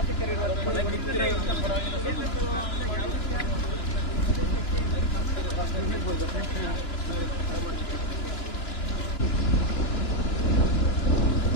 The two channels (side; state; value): right; late; 2.9 ms